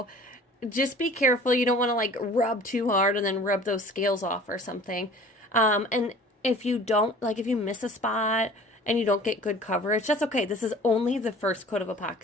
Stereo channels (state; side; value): normal; both; correlation 0.46